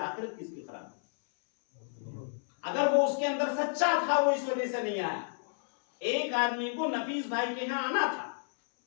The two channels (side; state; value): right; silent; 57 dB below the other